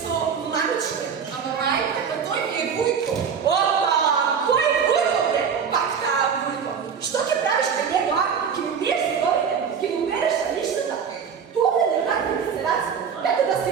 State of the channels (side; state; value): left; quieter; 6.8 dB